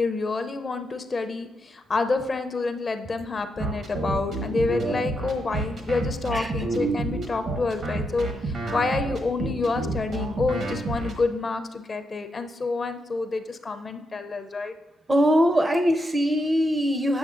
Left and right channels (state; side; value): normal; both; correlation 0.83